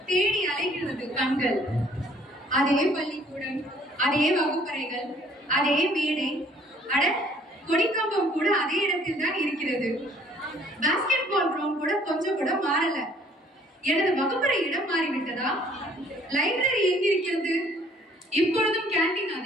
தேடி அலைகிறது கண்கள். அதே பள்ளிக்கூடம், அதே வகுப்பறைகள், அதே மேடை, அட கொடிக்கம்பம் கூட அதே இடத்தில் தான் இருக்கிறது. பாஸ்கெட் பால் கிரவுண்ட் கூட கொஞ்சம் கூட மாறல. எனது வகுப்பறை இடம் மாறிவிட்டதா? லைப்ரரி எங்கிருக்கிறது? இப்பொழுதும் கேண்டீன்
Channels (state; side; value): normal; both; correlation 0.59